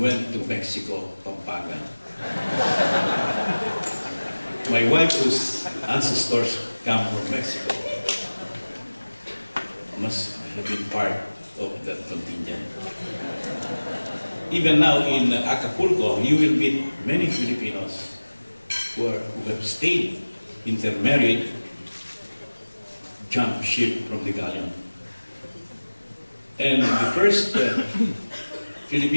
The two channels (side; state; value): both; inverted; correlation -1.00